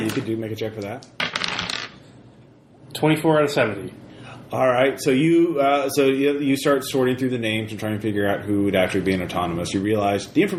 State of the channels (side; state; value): both; identical; correlation 1.00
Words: could make a check for that. 24 out of 70. All right, so you start sorting through the names and trying to figure out who would actually be an autonomous. You realize the